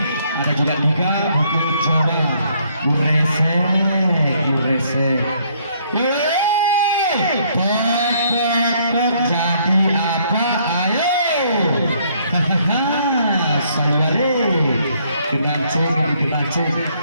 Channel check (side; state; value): both; inverted; correlation -0.67